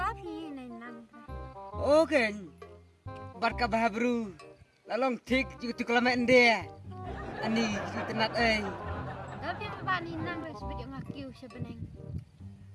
pilih nang. Okay. Barka bahabru. Lalong tik juga tu kelamaan dia. Ani kita nak Tapi apa ni nang sebab ngakiu sebeneng.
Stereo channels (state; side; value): identical; both; correlation 1.00